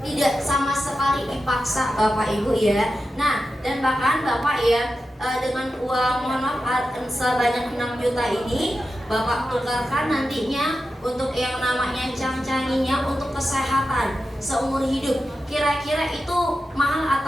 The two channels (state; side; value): normal; both; correlation 0.91